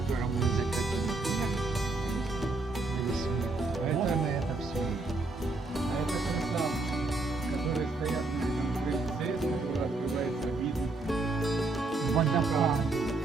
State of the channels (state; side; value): quieter; left; 3.4 dB